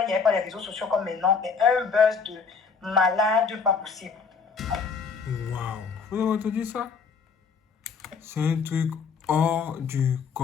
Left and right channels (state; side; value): quieter; right; 5.5 dB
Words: il n'y avait pas les réseaux sociaux comme maintenant, mais un buzz de malade pas possible. Waouh, vous avez entendu ça? C'est un truc hors du